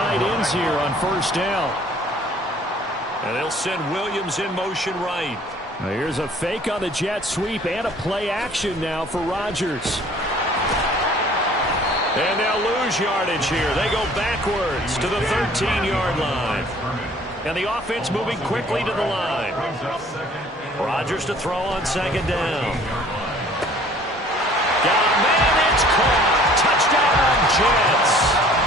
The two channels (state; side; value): normal; both; correlation 0.54